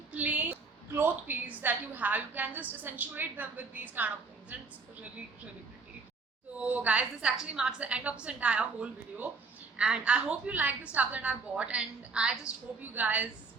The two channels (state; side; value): quieter; left; 4.4 dB